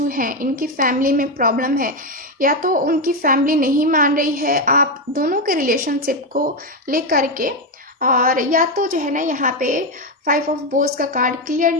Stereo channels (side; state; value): both; normal; correlation 0.08